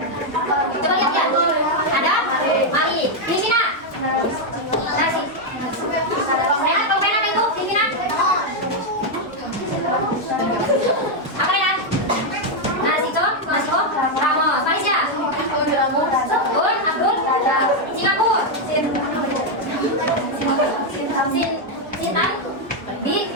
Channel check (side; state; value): both; normal; correlation 0.01